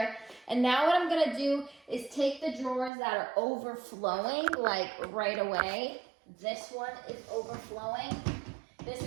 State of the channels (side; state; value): left; drops out; at 2.9 s